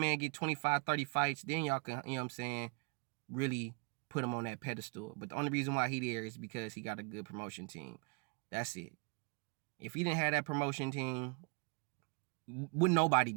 get 25, 30 fights, then y'all can, you know what I'm saying, really put him on that pedestal. But the only reason why he there is because he got a good promotion team. That's it. If he didn't have that promotion team, would nobody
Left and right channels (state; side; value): quieter; left; 32.6 dB